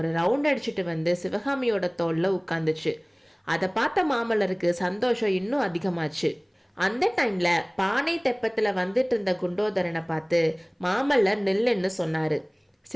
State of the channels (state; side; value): identical; both; correlation 1.00